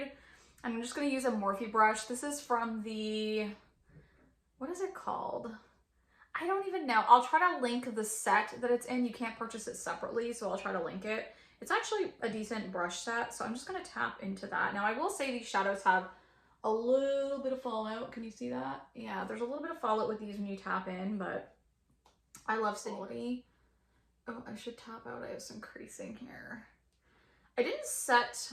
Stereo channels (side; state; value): both; identical; correlation 1.00